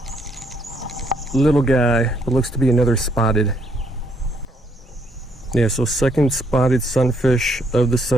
Little guy, but looks to be another spotted. Yeah, so second spotted sunfish of the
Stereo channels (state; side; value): normal; both; correlation 0.71